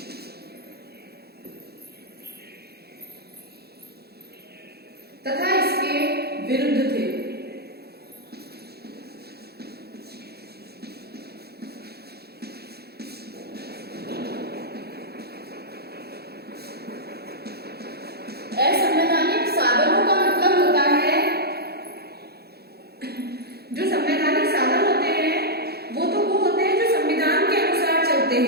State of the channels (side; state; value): left; late; 0.46 ms